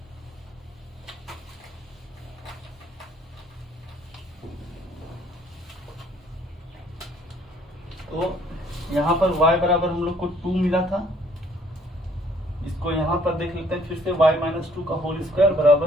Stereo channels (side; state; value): both; normal; correlation 0.61